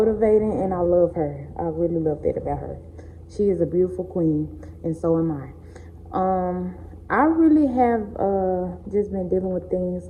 and I love her. I really love that about her. She is a beautiful queen, and so am I. I really have just been dealing with things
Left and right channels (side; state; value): both; identical; correlation 1.00